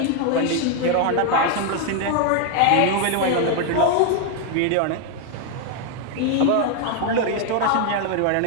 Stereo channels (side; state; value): both; different; correlation 0.01